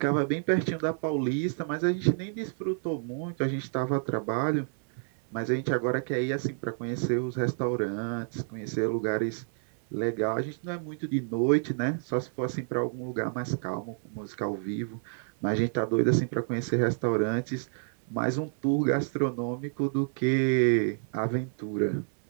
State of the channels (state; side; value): silent; left; 58 dB below the other